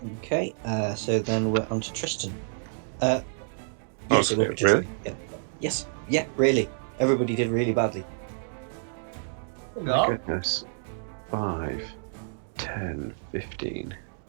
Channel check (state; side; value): silent; left; digital silence